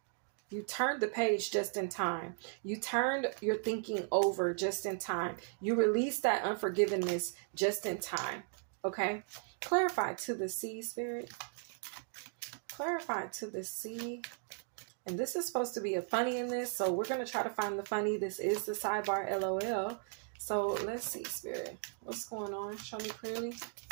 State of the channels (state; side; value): silent; left; 53 dB below the other